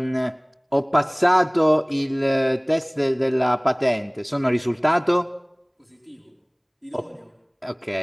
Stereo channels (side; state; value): both; identical; correlation 1.00